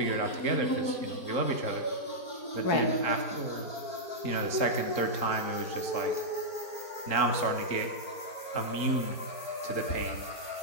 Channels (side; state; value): right; late; 4.4 ms